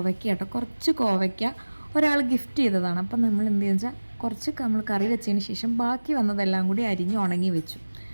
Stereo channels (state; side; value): inverted; both; correlation -1.00